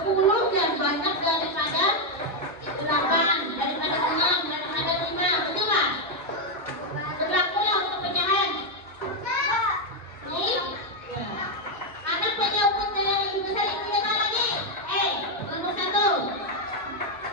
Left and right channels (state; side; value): normal; both; correlation 0.02